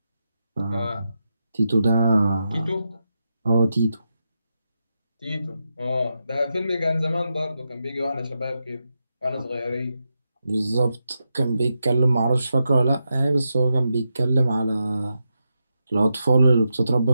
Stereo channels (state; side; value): inverted; both; correlation -0.87